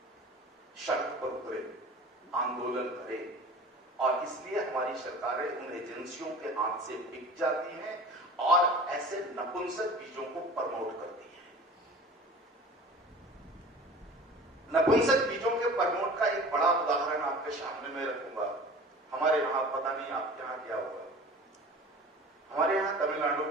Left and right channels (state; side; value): normal; both; correlation 0.40